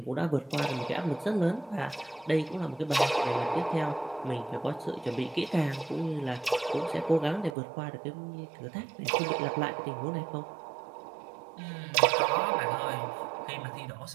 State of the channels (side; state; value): left; drops out; at 7.6 s